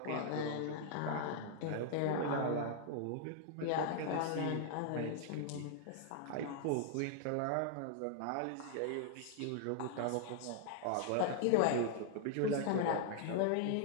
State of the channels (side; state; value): both; different; correlation 0.00